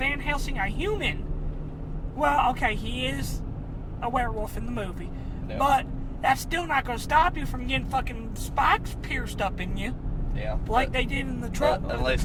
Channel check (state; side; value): identical; both; correlation 1.00